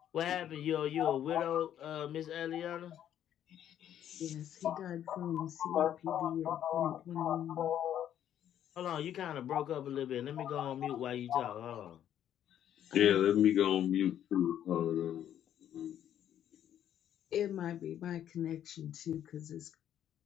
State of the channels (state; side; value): quieter; right; 10.5 dB